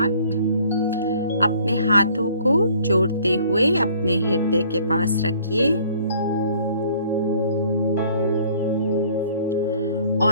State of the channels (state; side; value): inverted; both; correlation -0.57